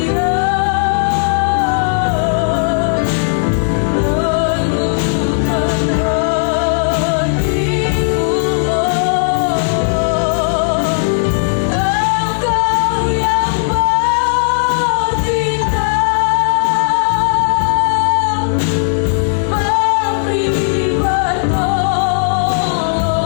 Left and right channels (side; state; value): right; silent; digital silence